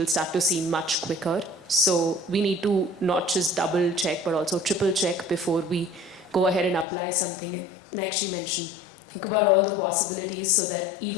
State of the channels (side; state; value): right; drops out; at 6.9 s